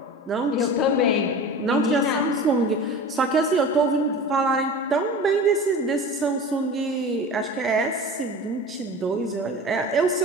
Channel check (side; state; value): both; normal; correlation 0.36